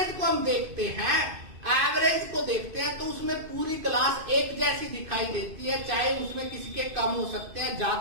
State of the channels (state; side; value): late; left; 2.5 ms